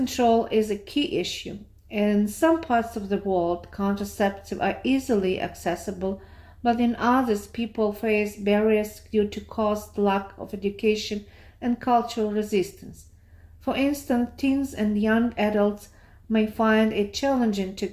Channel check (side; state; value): both; identical; correlation 1.00